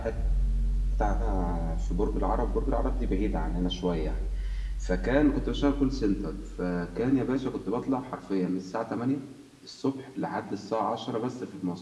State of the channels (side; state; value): both; identical; correlation 1.00